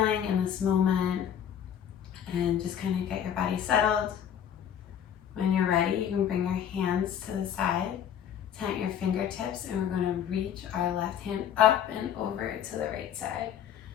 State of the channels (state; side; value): quieter; right; 9.3 dB